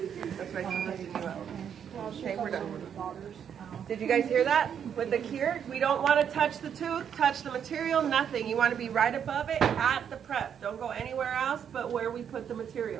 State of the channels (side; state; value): left; quieter; 8.3 dB